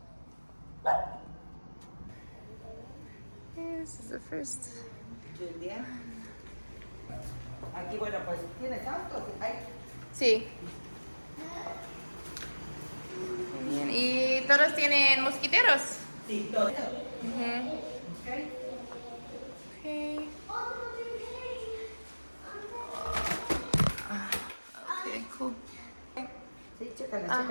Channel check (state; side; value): inverted; both; correlation -1.00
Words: This is the first. Julia. Aquí, bueno, pues, ¿tienes autos? Sí. Bien. ¿Y todos tienen mosquiteros? Sí, todos. Okay. Okay. Okay, cool. Sí, chécala, Okay.